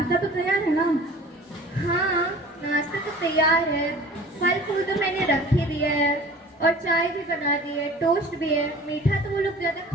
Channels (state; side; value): normal; both; correlation 0.44